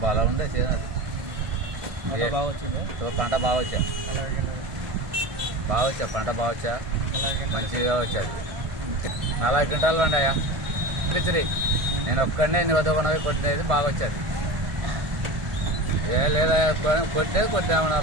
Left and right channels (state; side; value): late; left; 1.5 ms